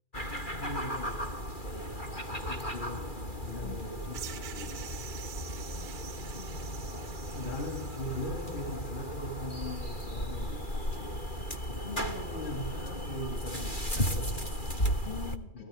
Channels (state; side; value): late; right; 2.4 ms